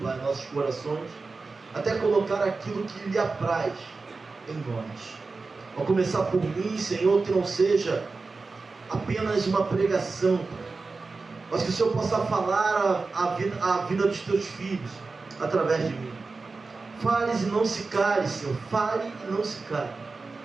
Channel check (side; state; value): left; quieter; 4.0 dB